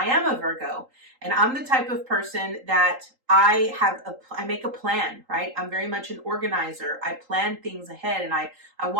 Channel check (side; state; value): left; late; 3.8 ms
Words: am a Virgo and I'm the type of person that I make a plan, right? I'm very much an organizer. I plan things ahead and I